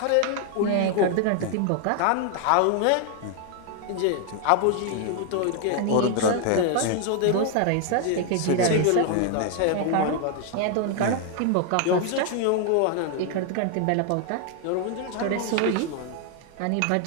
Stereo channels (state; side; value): different; both; correlation 0.00